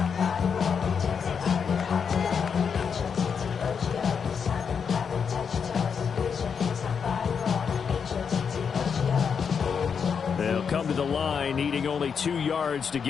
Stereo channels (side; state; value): right; quieter; 6.5 dB